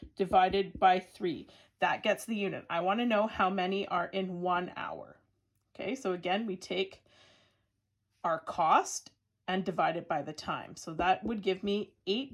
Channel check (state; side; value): identical; both; correlation 1.00